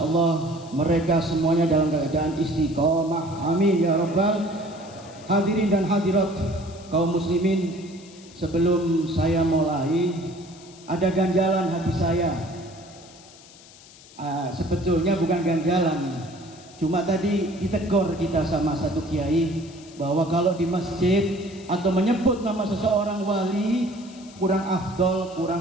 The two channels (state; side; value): noise; left; hiss, 22 dB below the sound